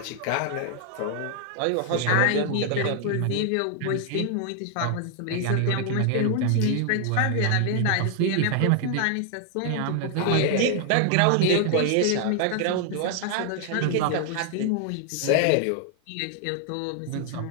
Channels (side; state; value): both; different; correlation 0.00